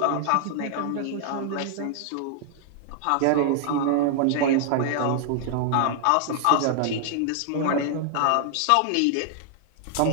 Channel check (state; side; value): different; both; correlation 0.00